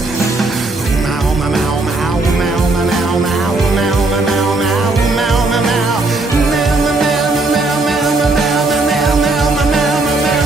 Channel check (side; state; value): left; quieter; 3.2 dB